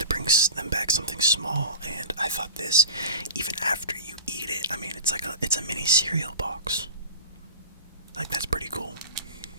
bring them back something small, and I thought this, even after you eat it, I mean, it's a mini cereal box. Like, that's pretty cool.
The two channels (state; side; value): inverted; both; correlation -0.34